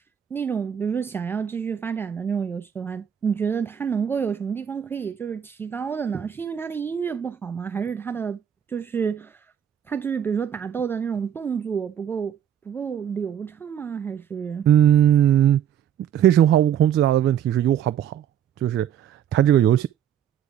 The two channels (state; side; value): quieter; left; 9.5 dB